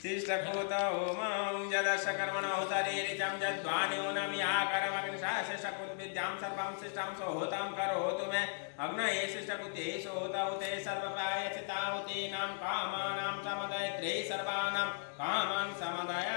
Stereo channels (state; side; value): silent; right; digital silence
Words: तिष्ठकोत ओमं जदशकर्मण होतारे रिजं जद्वानि ओनमि आकरमग्नि शासशकुत विद्यां सर्वं शिष्टं सोहोतां करोतु मे अग्नये शिष्टकुते सोहोता उते सर्वपायचिता उतीनां कामानां समदय त्रै सर्वानां कामान् समदय